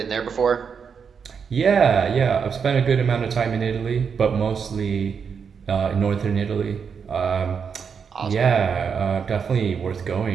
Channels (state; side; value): quieter; left; 6.4 dB